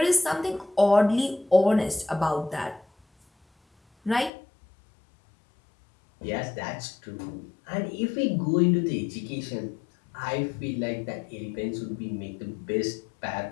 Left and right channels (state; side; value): drops out; right; at 4.3 s